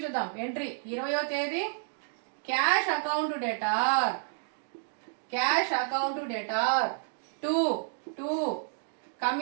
చూద్దాం. ఎంట్రీ 20వ తేదీ cash account debtor. Cash account debtor 2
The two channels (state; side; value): silent; left; digital silence